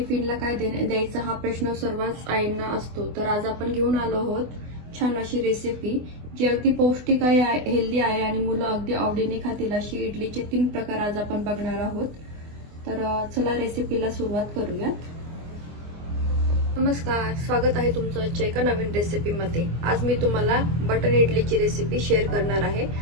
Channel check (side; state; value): left; late; 24 ms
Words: काय द्यायचं हा प्रश्न सर्वच आईंना असतो. तर आज आपण घेऊन आलो आहोत छान अशी रेसिपी जी अगदी पौष्टिक आहे, हेल्दी आहे आणि मुलं अगदी आवडीने खातील अशी इडलीचे 3 प्रकार आज आपण बघणार आहोत. तर चला रेसिपीला सुरुवात करूयात. नमस्कार, स्वागत आहे तुमचं आजच्या एका नवीन रेसिपीमध्ये. आज मी तुम्हाला बटर इडलीची रेसिपी शेअर करणार आहे.